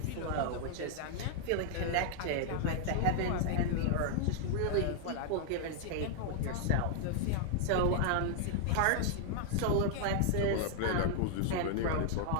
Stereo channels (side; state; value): both; different; correlation 0.00